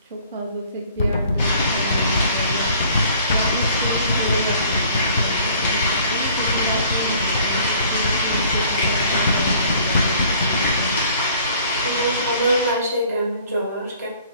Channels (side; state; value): both; inverted; correlation -0.55